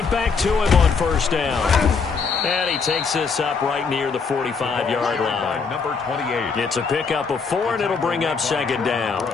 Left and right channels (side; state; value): right; quieter; 5.1 dB